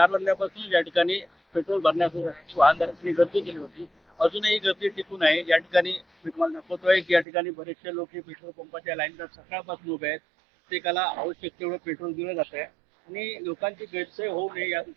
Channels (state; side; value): drops out; left; at 7.2 s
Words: वाजल्यापासून या ठिकाणी पेट्रोल भरण्यासाठी वाहनधारकांनी गर्दी केली होती. अजूनही गर्दी टिकून आहे. या ठिकाणी मी तुम्हाला दाखवतोय की या ठिकाणी बरेचसे लोक पेट्रोल पंपाच्या लाईनवर सकाळपासून उभे आहेत. प्रत्येकाला आवश्यक तेवढं पेट्रोल दिलं जात आहे आणि लोकांची गैरसोय होऊ नये या